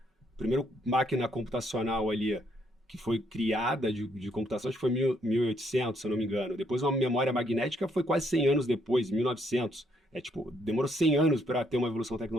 máquina computacional ali que foi criada de computação, acho que foi 1800, se eu não me engano. Depois uma memória magnética foi quase 100 anos depois, 1900. Demorou 100 anos para ter uma evolução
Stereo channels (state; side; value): normal; both; correlation 0.71